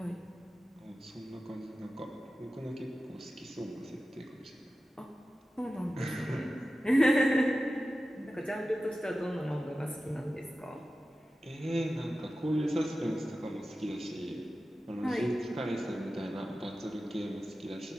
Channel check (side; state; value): both; normal; correlation 0.94